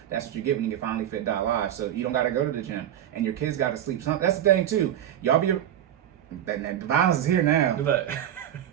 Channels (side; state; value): left; quieter; 11.0 dB